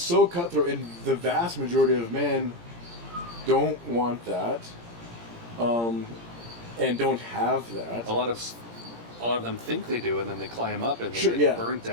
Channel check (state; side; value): late; left; 17 ms